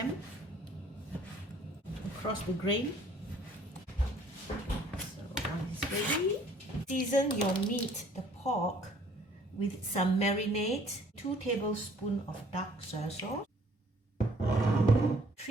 across the grain. So one is ready. Season your meat, the pork, with some marinade. 2 tablespoons of dark soy sauce.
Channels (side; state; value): both; normal; correlation 0.58